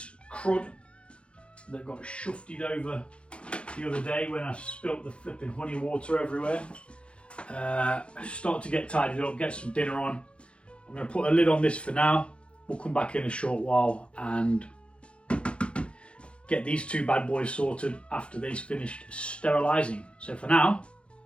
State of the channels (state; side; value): late; right; 0.059 ms